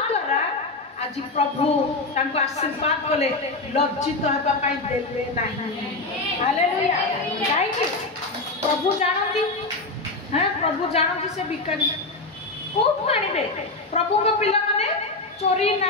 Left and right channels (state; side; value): quieter; right; 3.3 dB